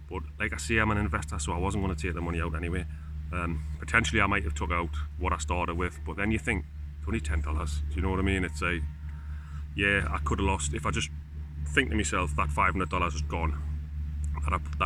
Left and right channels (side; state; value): both; identical; correlation 1.00